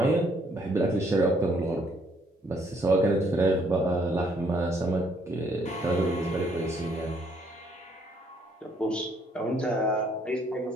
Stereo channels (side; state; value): both; normal; correlation 0.67